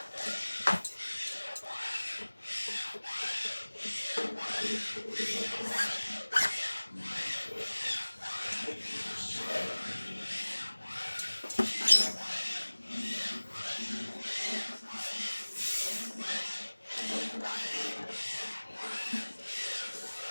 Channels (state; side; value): inverted; both; correlation -1.00